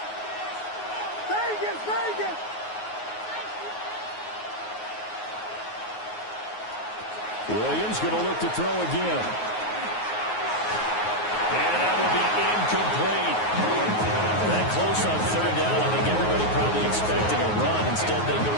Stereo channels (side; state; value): right; late; 9.5 ms